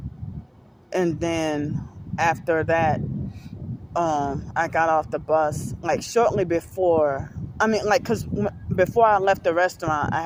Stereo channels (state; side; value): identical; both; correlation 1.00